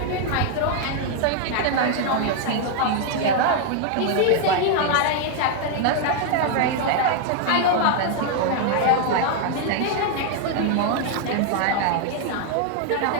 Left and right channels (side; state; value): both; different; correlation 0.00